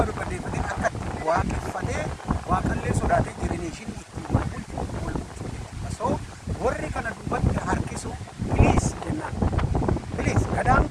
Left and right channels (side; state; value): both; identical; correlation 1.00